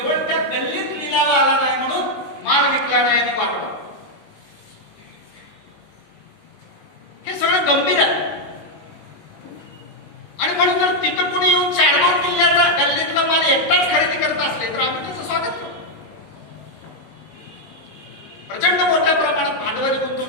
त्या गल्लीत लिलाव आला नाही म्हणून माल विकला नाही आणि वाटला. हे सगळं गंभीर आहे. आणि म्हणून जर तिथं कोणी येऊन चाडगाव किल्ल्याचा गल्लीतला माल एकटाच खरेदी करत असले तर आम्ही त्याचं स्वागत करू. प्रचंड मोठ्या प्रमाणात भांडवली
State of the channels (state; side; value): late; right; 19 ms